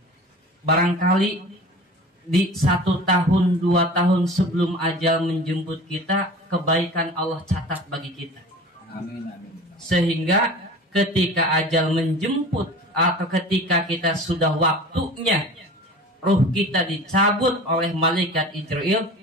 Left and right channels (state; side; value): normal; both; correlation 0.39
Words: Barangkali di 1 tahun, 2 tahun sebelum ajal menjemput kita, kebaikan Allah catat bagi kita. Amin. Sehingga ketika ajal menjemput atau ketika kita sudah waktunya ruh kita dicabut oleh malaikat Israel,